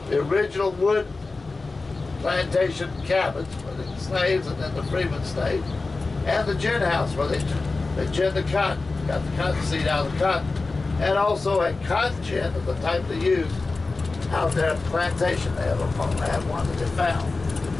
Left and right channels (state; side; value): quieter; right; 3.7 dB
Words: the original wood plantation cabins where the slaves and then the freemen stayed, and the gin house where they gin the cotton, got the cotton seed out of the cotton, and also a cotton gin of the type they use out there at the plantation. They have one that they found,